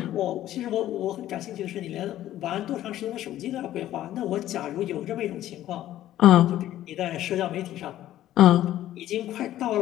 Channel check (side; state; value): right; quieter; 13.2 dB